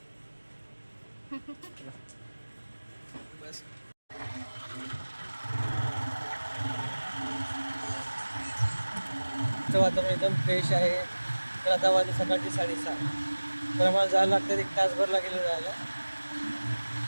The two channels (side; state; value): both; inverted; correlation -1.00